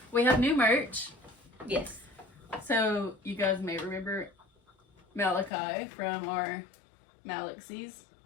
We have new merch. Yes. So, you guys may remember Malachi from our Malaxies.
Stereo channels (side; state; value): right; drops out; at 5.5 s